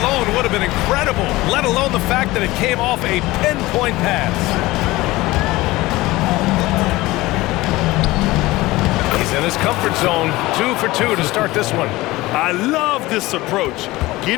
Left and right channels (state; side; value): quieter; right; 19.3 dB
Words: alone would have been incredible, let alone the fact that it came off a pinpoint pass. He's in his comfort zone, 2 for 2 to start this one. I love this approach.